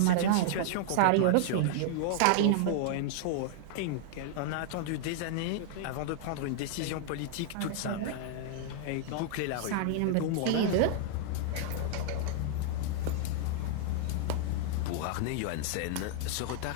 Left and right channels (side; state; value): both; different; correlation -0.01